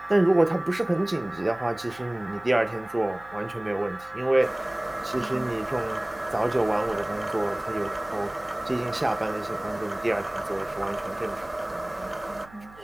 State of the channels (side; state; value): right; noise; hum, 22 dB below the sound